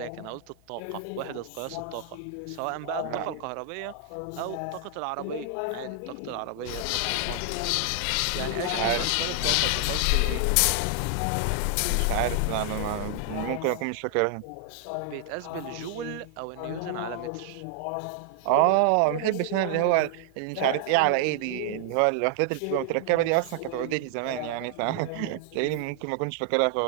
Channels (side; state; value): both; different; correlation 0.00